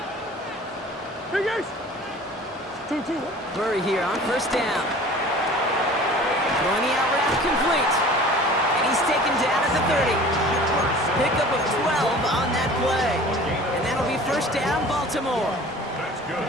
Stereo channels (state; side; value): normal; both; correlation 0.44